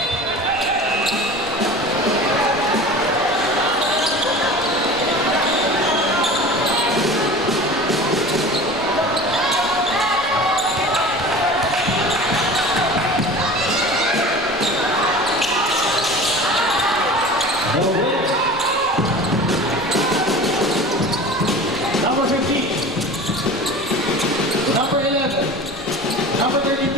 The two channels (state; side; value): noise; right; rumble, 23 dB below the sound